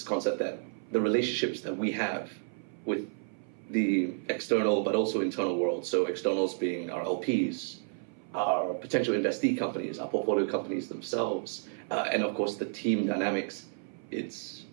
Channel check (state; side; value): silent; left; 56 dB below the other